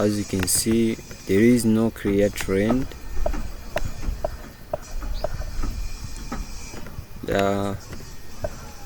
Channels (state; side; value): identical; both; correlation 1.00